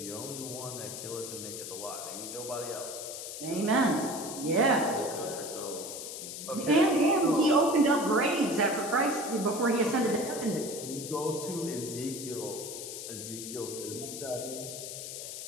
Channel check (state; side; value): noise; left; hiss, 8 dB below the sound